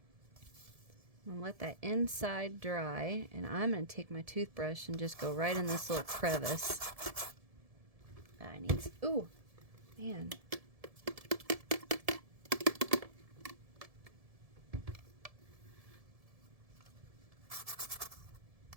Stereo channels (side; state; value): left; late; 1.7 ms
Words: I'm gonna let that inside dry, and I'm gonna take my toothbrush and just go right in this little crevice. I need. Ooh, man.